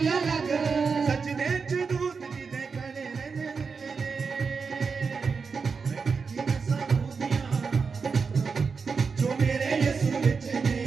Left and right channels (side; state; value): left; quieter; 5.2 dB